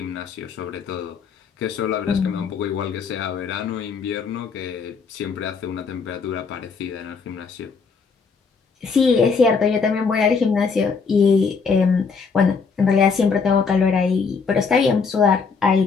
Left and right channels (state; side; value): quieter; right; 5.2 dB